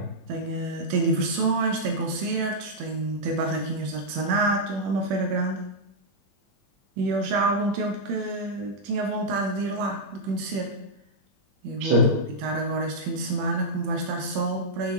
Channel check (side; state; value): left; late; 21 ms